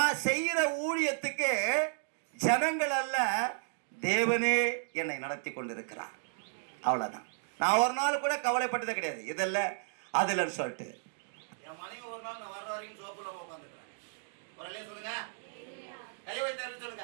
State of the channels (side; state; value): left; silent; digital silence